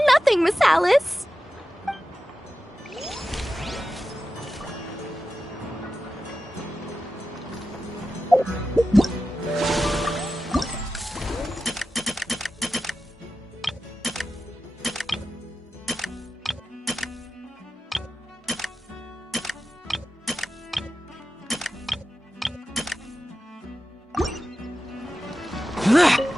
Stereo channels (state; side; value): normal; both; correlation 0.93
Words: nothing, Miss Alice.